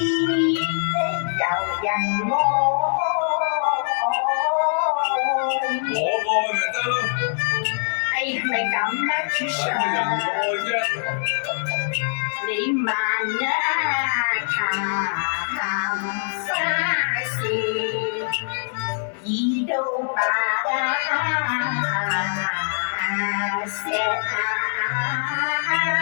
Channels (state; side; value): silent; right; digital silence